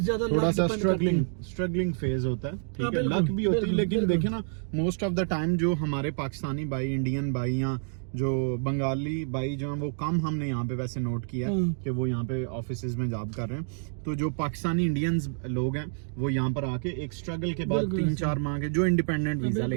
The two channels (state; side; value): silent; left; 59 dB below the other